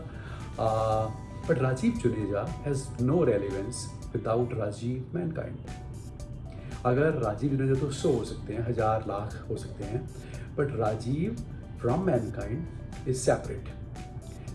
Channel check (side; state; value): both; identical; correlation 1.00